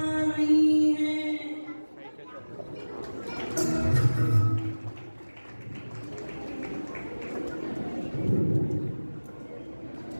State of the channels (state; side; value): inverted; both; correlation -1.00